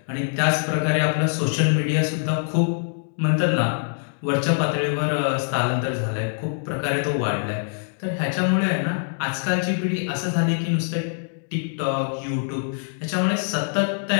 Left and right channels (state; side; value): silent; right; digital silence